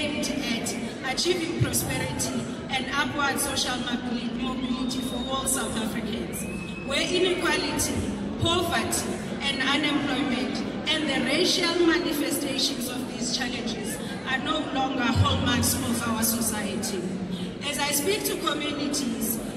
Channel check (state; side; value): identical; both; correlation 1.00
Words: at achieving prosperity and upward social mobility for all South Africans, where inequality, poverty, and unemployment and the racial manifestations of these challenges are no longer hallmarks of our society. As I speak to communities